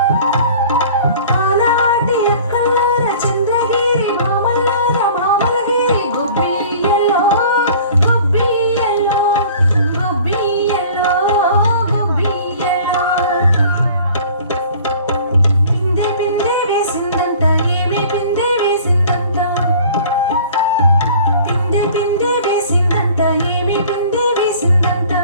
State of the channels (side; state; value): both; inverted; correlation -0.47